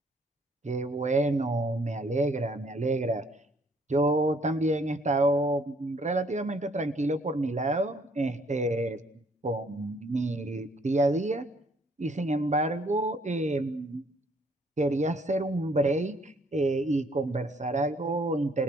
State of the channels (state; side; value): normal; both; correlation 0.64